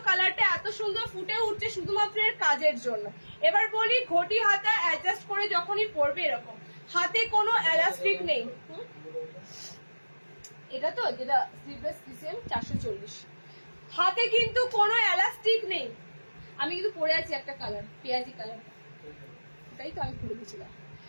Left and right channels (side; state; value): both; inverted; correlation -1.00